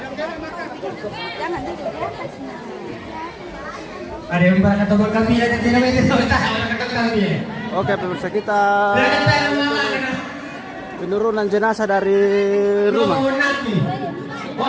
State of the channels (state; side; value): identical; both; correlation 1.00